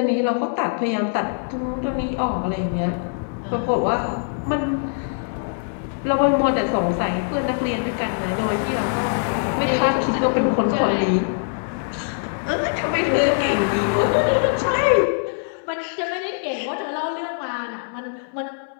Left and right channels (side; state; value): right; silent; 64 dB below the other